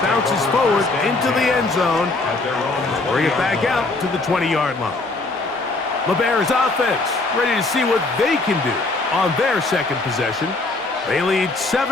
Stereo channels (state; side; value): quieter; right; 3.3 dB